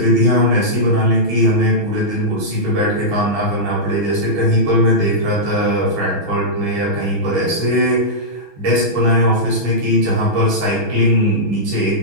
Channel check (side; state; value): left; late; 6.2 ms